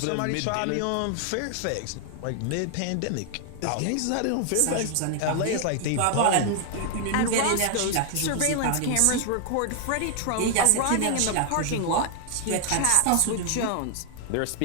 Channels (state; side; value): different; both; correlation 0.00